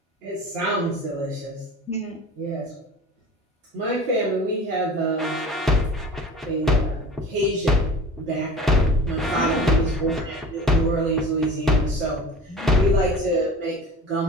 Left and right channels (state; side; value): normal; both; correlation 0.39